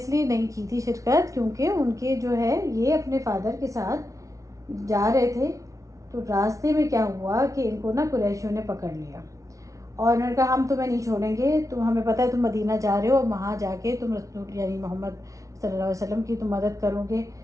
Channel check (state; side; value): late; left; 0.16 ms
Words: नहीं की थी शिरकत क्योंकि उनके जो है ये अपने फादर के साथ जा रहे थे, तो रास्ते में क्या हुआ कि इनको ना कुरैशियों ने पकड़ लिया, और उन्होंने कहा हम तुम्हें नहीं छोड़ेंगे, तुम, हमें पता है तुम मदीना जा रहे हो, और वहाँ जाके तुम रसूल यानी मोहम्मद सल्लल्लाहु अलैहि वसल्लम की तुम मदद करोगे,